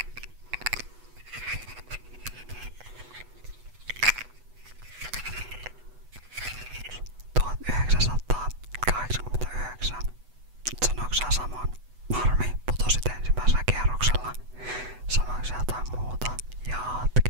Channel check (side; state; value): left; late; 8.1 ms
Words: ...1989. Sanoiko sä saman? Harmi, putosit ensimmäisellä kierroksella. Sanoiko sä jotain muuta?